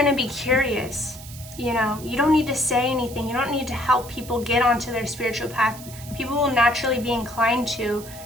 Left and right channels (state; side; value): noise; right; hiss, 16 dB below the sound